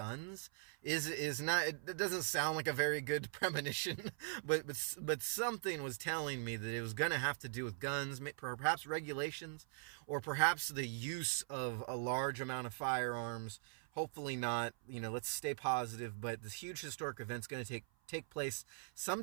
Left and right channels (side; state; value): left; silent; 50 dB below the other